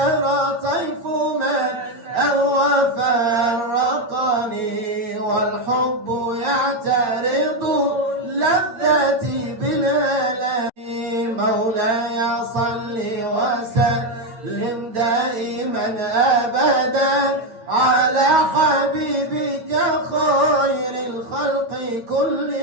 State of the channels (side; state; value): left; late; 8.9 ms